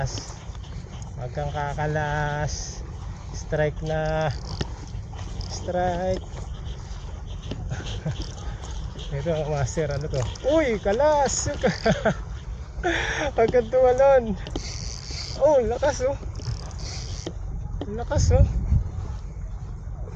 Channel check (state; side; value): identical; both; correlation 1.00